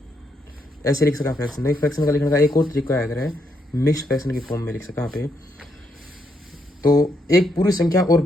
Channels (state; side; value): normal; both; correlation 0.77